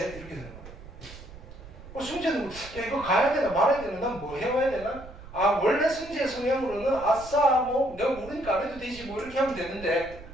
이렇게 되는 거야. 승재는 이거 가야 되나 말아야 되나 난 뭐 해와야 되나? 원래 승재의 성향으로는 아싸 내가 모르니까 안 해도 되지 이렇게 하면 되는데,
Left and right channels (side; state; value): right; noise; rumble, 16 dB below the sound